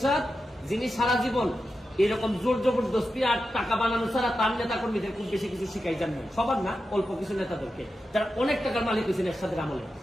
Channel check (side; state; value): both; normal; correlation 0.90